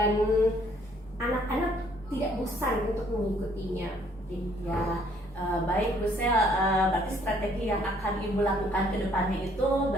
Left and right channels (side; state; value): both; normal; correlation 0.63